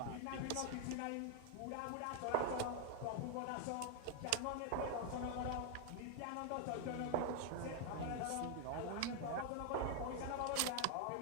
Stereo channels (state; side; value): different; both; correlation 0.00